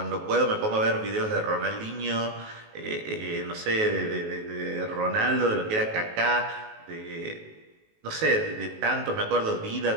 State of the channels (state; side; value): late; left; 19 ms